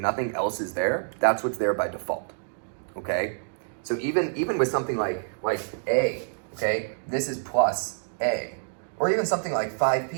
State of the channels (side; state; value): left; silent; digital silence